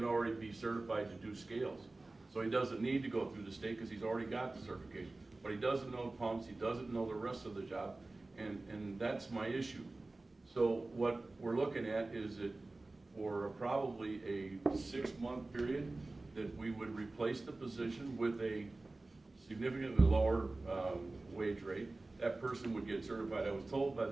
already be certified to do scales. So he doesn't need to go through the state because he's already got the certification. But he doesn't know pumps, he doesn't know the rest of the job, and that's my issue. So what we're looking at is that for probably a 6-month period, that we would replace the position with a significantly lower wage rate. That person would get certified. I was told by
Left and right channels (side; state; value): left; quieter; 3.1 dB